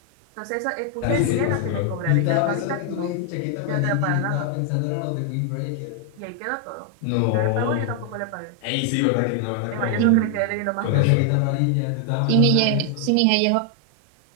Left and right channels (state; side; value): different; both; correlation 0.00